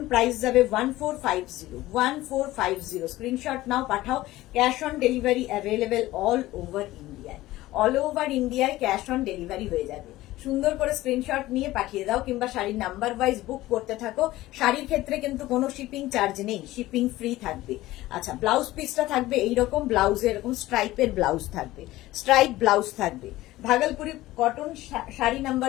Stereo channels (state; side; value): quieter; right; 16.9 dB